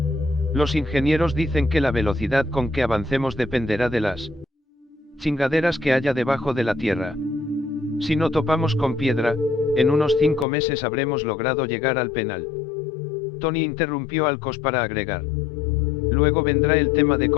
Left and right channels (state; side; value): drops out; right; at 10.5 s